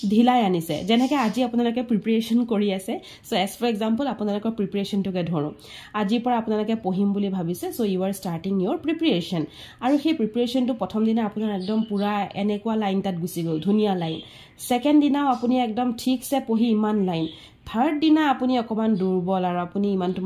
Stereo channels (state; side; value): identical; both; correlation 1.00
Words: ঢিলাই আনিছে যেনেকৈ আজি আপোনালোকে প্ৰিপাৰেচন কৰি আছে সো এজ ফৰ এক্সাম্পল আপোনালোকৰ প্ৰিপাৰেচনটোকে ধৰো আজিৰ পৰা আপোনালোকে পঢ়িম বুলি ভাবিছে so you are starting your preparation আৰু সেই প্ৰিপাৰেচনটো প্ৰথম দিনা আপোনাৰ একদম পুৰা এনেকুৱা লাইন তাত গুচি গ'ল ধুনীয়া লাইন সেকেন্ড দিনাও আপুনি একদম ঠিকছে পঢ়ি ইমান লাইন থাৰ্ড দিনা আপুনি অকমান দুৰ্বল আৰু আপুনি